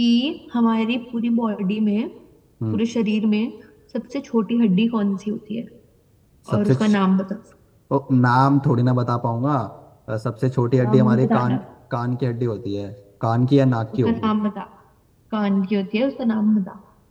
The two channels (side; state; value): both; identical; correlation 1.00